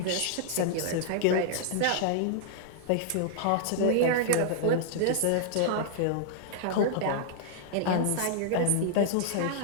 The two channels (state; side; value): different; both; correlation -0.01